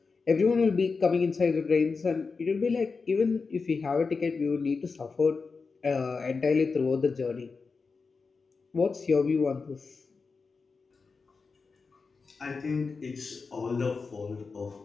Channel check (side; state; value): right; quieter; 4.6 dB